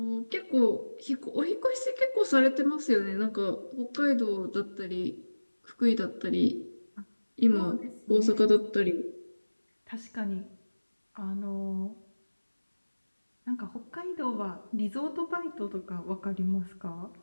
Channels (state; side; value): inverted; both; correlation -1.00